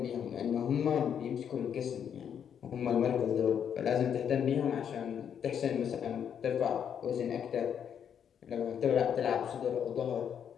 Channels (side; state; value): right; quieter; 8.3 dB